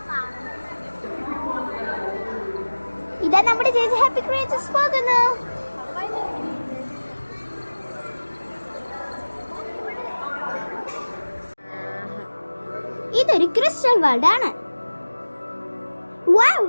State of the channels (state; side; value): inverted; both; correlation -1.00